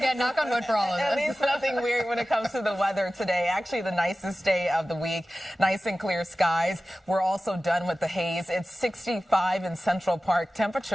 knock on wood for all of At this. least nothing weird when it comes to the weather today. Actually, the nicest day of the week. Nice and clear skies. We're also done with the haze. It's 65 in Central Park.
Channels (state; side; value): normal; both; correlation 0.96